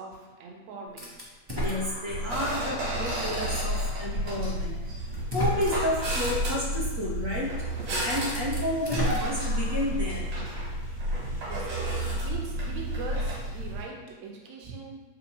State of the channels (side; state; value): left; late; 8.2 ms